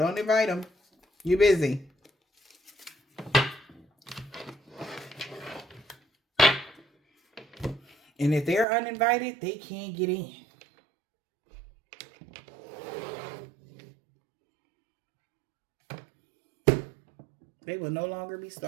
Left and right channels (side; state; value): left; drops out; at 8.7 s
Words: invite them. You're busy. And if they're uninvited, they can't get in. They will no longer be